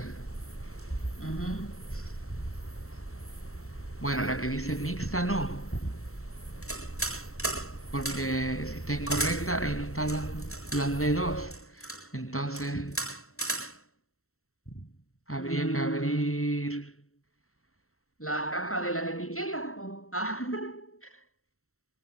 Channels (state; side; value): late; right; 0.63 ms